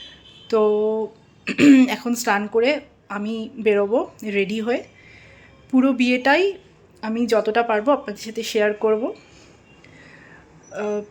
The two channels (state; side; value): identical; both; correlation 1.00